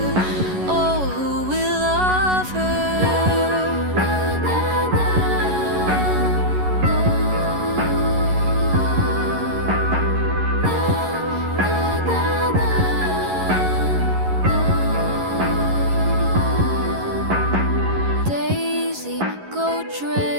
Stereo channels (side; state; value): left; late; 11 ms